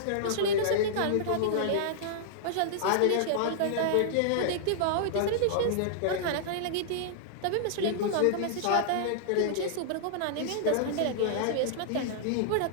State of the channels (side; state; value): both; different; correlation -0.02